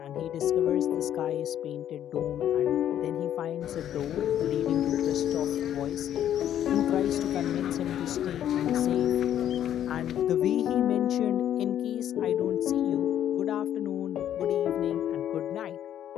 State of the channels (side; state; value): right; quieter; 10.7 dB